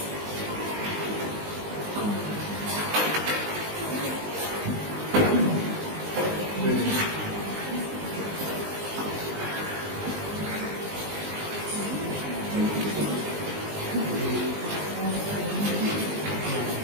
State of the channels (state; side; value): late; left; 19 ms